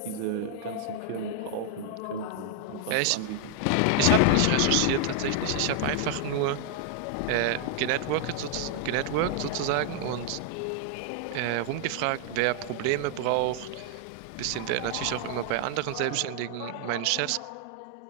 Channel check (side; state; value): both; different; correlation 0.00